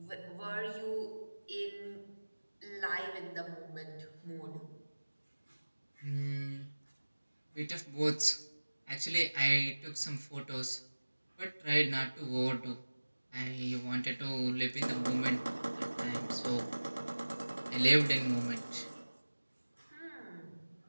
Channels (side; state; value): both; inverted; correlation -1.00